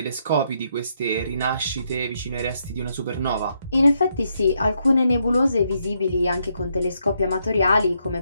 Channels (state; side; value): inverted; both; correlation -0.77